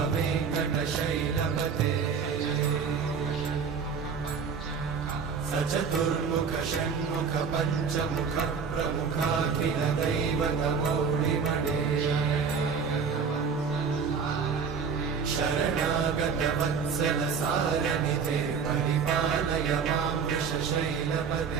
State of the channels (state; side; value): quieter; left; 6.0 dB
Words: वेङ्कटशैलपते सचतुर्मुख षण्मुख पञ्चमुख प्रमुखाखिल दैवतमौलिमणे शरणागत वत्सल सारनिधे परिपालय मां